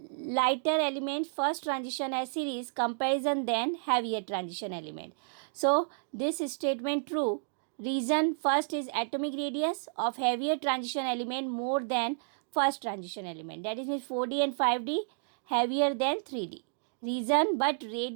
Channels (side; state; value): left; silent; digital silence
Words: element first transition series comparison than heavier transition element. So this statement true. Reason first is atomic radius of heavier transition element more than first transition element. That is means 4D and 5D heavier than 3D. Reason but